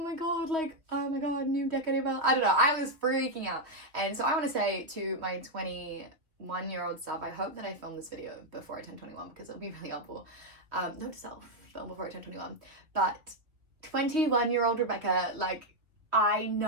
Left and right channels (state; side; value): late; left; 2.9 ms